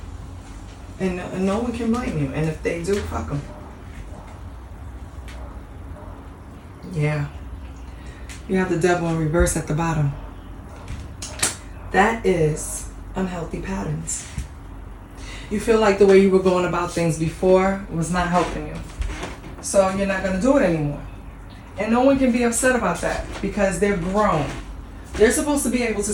And no one can blame you. And if they do, fuck them. Yeah. You have the devil in reverse at the bottom. That is unhealthy patterns. You feel like the way you were going about things before was not helping you. So you're not going to do it anymore. And no one can be upset about that because they're grown. They're supposed to be able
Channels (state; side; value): identical; both; correlation 1.00